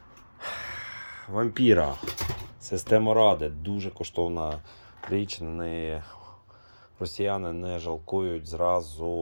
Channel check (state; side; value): inverted; both; correlation -1.00